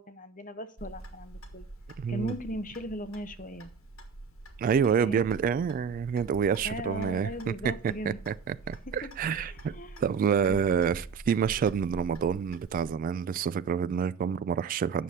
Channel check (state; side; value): quieter; left; 6.2 dB